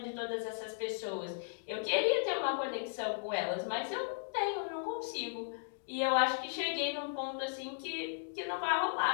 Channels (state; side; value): silent; right; digital silence